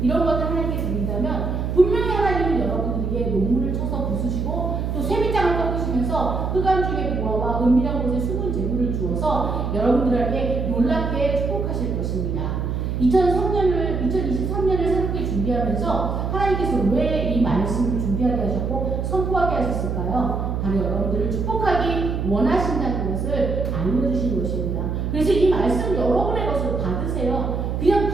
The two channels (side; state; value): right; noise; hum, 2 dB below the sound